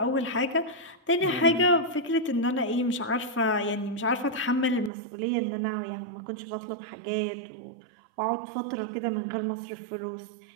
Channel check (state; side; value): drops out; left; at 4.9 s